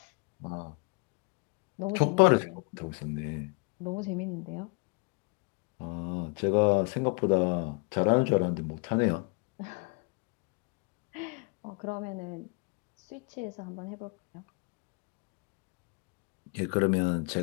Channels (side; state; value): right; quieter; 34.0 dB